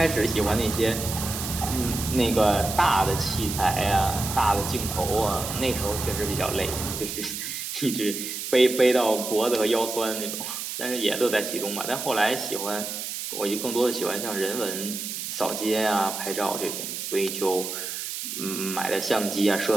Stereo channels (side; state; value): right; noise; hiss, 6 dB below the sound